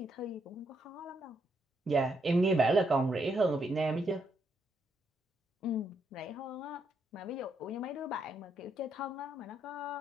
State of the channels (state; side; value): normal; both; correlation 0.77